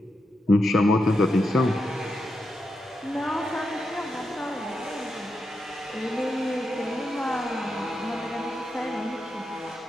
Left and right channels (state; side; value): normal; both; correlation 0.85